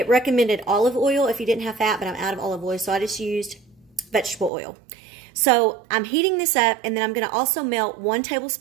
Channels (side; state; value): left; drops out; at 4.5 s